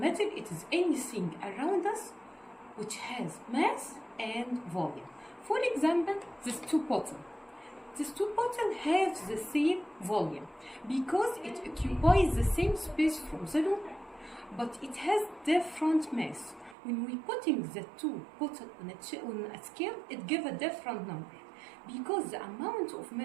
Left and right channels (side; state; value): left; drops out; at 16.8 s